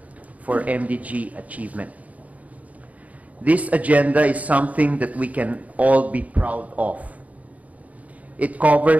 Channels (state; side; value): late; left; 0.071 ms